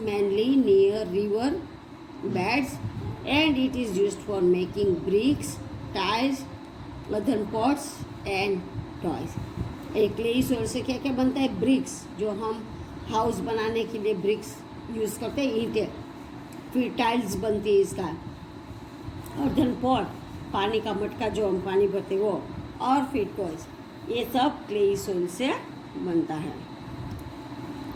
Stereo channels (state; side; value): identical; both; correlation 1.00